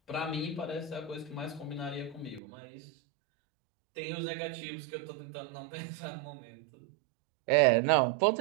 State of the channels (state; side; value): drops out; left; at 2.4 s